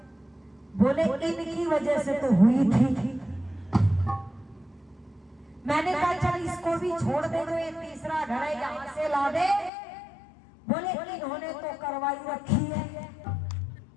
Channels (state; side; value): drops out; right; at 9.7 s